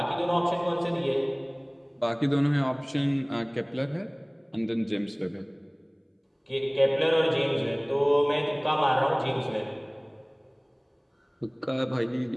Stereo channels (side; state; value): both; identical; correlation 1.00